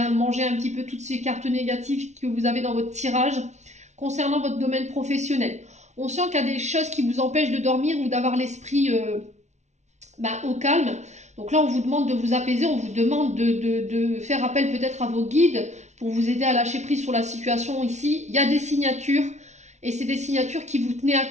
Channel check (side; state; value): left; late; 0.33 ms